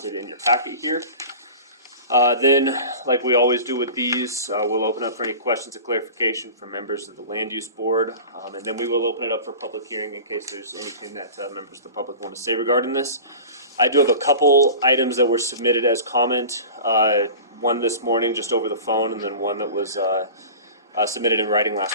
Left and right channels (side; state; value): both; inverted; correlation -0.36